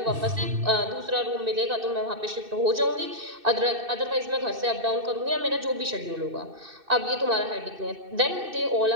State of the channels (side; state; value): left; late; 2.6 ms